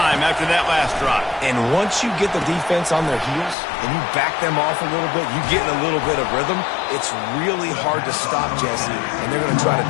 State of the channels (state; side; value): drops out; right; at 3.6 s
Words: after that last drive. And once you get the defense on their heels and you back them off a little bit, you get in a little bit of rhythm, it's really hard to stop, Jesse, and they're going to try to